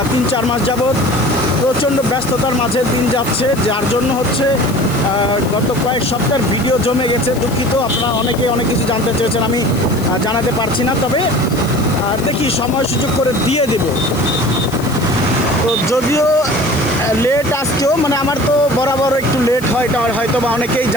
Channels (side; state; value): left; noise; hiss, 16 dB below the sound